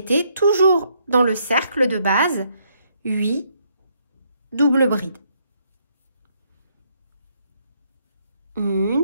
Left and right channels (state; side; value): inverted; both; correlation -0.72